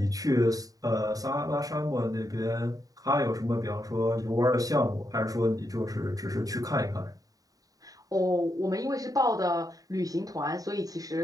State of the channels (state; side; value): late; left; 0.18 ms